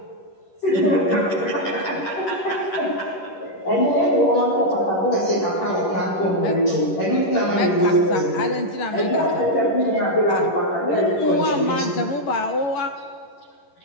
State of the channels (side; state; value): right; late; 11 ms